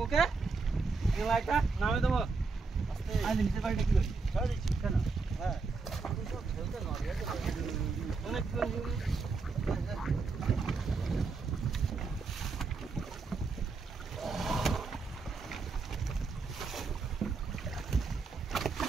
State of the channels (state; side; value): quieter; left; 4.3 dB